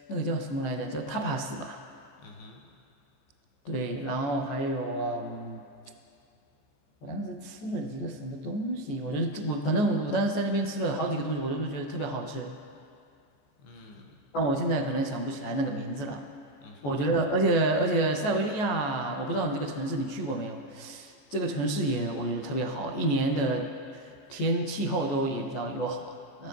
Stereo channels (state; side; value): late; right; 14 ms